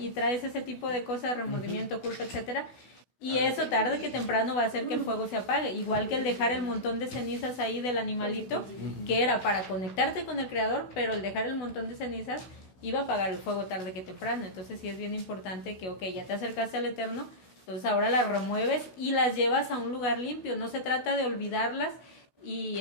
traes ese tipo de cosas, remordimiento, culpa, etcétera. Y eso tarde que temprano va a hacer que el fuego se apague, igual que el dejar el montón de cenizas ahí del animalito, que era para conectarte con el Creador, pero el dejar el montón de cenizas iba a apagar el fuego tarde que temprano. Entonces sí es bien importante que, ok, ya te acercaste al Eterno, entonces ahora las remueves y las llevas a un lugar limpio. No se trata de olvidarlas y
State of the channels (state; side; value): late; right; 16 ms